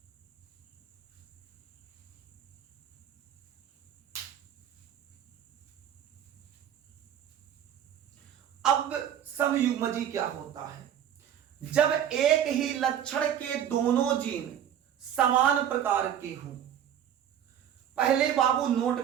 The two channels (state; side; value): quieter; left; 9.8 dB